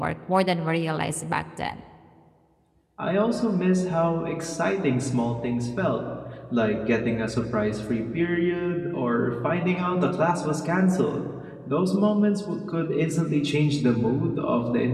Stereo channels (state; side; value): identical; both; correlation 1.00